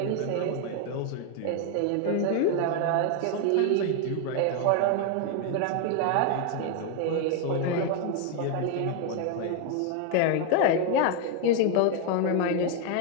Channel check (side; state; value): both; different; correlation 0.01